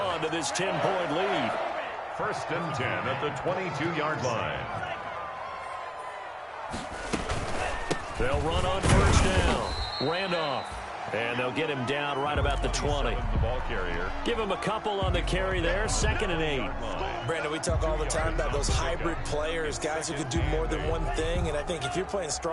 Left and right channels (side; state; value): both; identical; correlation 1.00